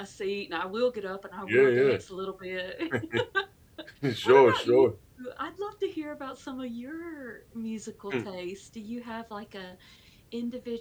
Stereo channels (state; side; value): identical; both; correlation 1.00